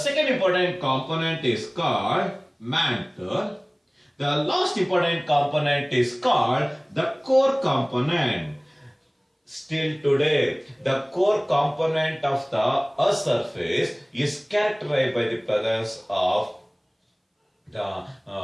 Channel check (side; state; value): both; identical; correlation 1.00